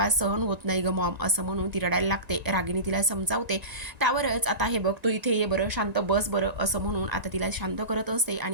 सहन होत नाही ग मॉम, असं म्हणून ती रडायला लागते. रागिनी तिला समजावते. त्यावरच आता हे बघ तू इथे ये बरं, शांत बस बरं, असं म्हणून आता तिला शांत करत असते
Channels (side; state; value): left; late; 1.9 ms